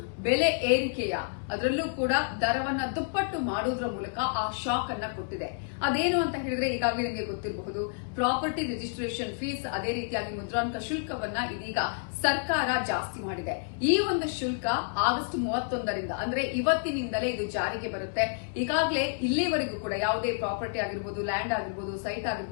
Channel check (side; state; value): right; silent; digital silence